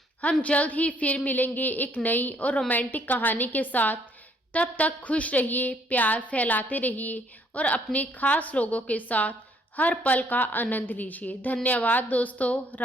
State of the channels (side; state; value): both; normal; correlation 0.66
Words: हम जल्द ही फिर मिलेंगे एक नई और रोमांटिक कहानी के साथ। तब तक खुश रहिए, प्यार फैलाते रहिए और अपने खास लोगों के साथ हर पल का आनंद लीजिए। धन्यवाद दोस्तों।